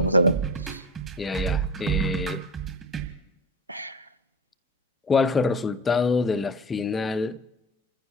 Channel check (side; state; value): both; normal; correlation 0.28